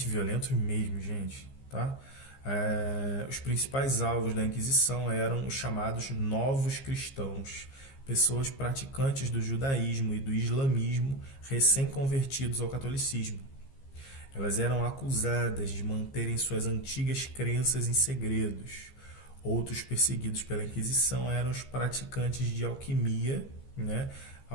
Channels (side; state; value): right; late; 15 ms